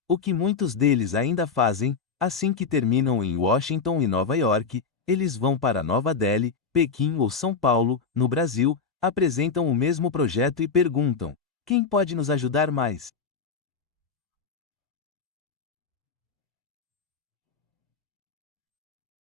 o que muitos deles ainda fazem, assim que terminam em Washington e Nova York, eles vão para Nova Delhi, Pequim ou São Paulo, no Brasil, apresentam o mesmo projeto e perguntam: quem pode nos ajudar mais?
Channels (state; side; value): quieter; right; 5.3 dB